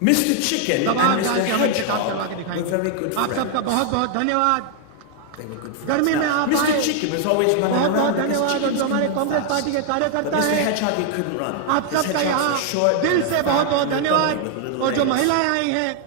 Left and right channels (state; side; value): different; both; correlation 0.00